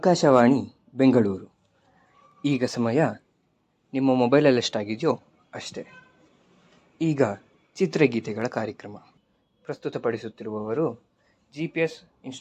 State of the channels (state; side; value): identical; both; correlation 1.00